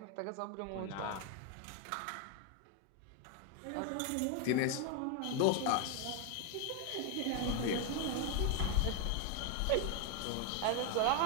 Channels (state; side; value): different; both; correlation 0.01